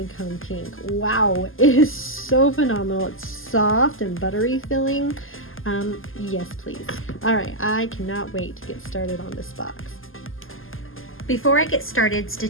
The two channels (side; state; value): right; late; 0.59 ms